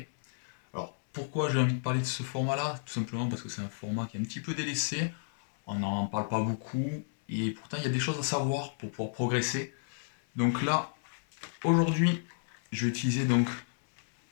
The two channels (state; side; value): silent; right; 57 dB below the other